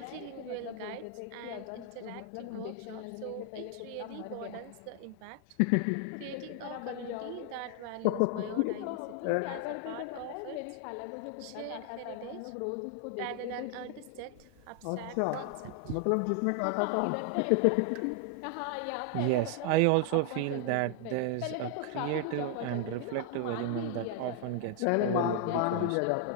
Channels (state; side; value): different; both; correlation 0.00